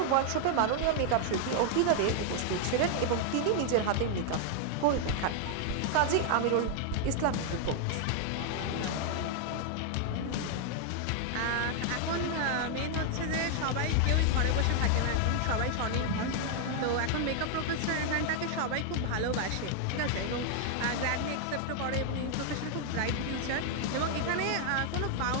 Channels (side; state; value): both; different; correlation 0.00